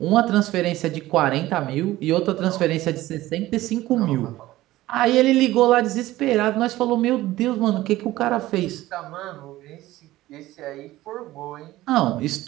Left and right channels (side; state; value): left; quieter; 16.5 dB